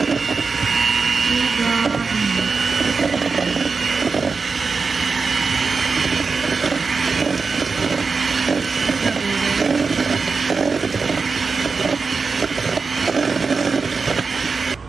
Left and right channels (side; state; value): left; quieter; 4.7 dB